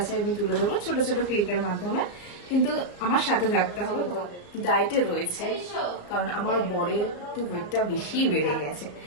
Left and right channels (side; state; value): right; late; 34 ms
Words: আমি তুলে দেবো ছোট ছোট ক্লিপের মাধ্যমে। কিন্তু আমার সাথে থাকতে হবে। তোমাদের ডায়েটে রয়েছে, কারণ আমার বরের একটু ওয়েটটা বেশি বেড়ে গেছে।